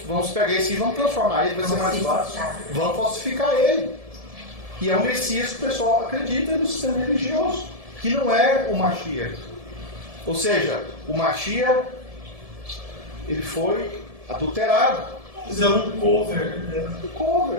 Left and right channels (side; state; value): left; late; 1.7 ms